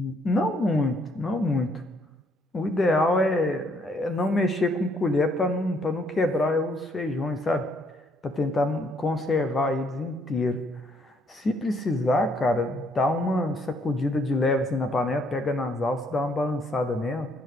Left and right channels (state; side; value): normal; both; correlation 0.68